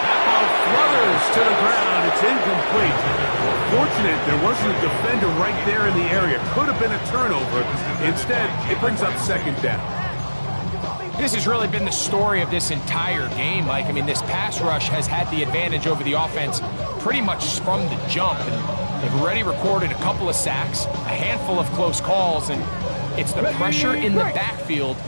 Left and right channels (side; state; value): both; inverted; correlation -1.00